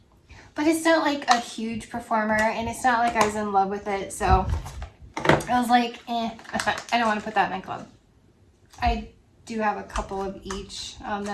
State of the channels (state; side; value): identical; both; correlation 1.00